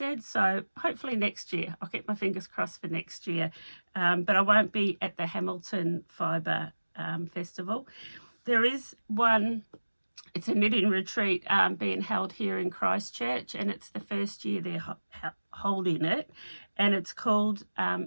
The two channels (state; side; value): inverted; both; correlation -1.00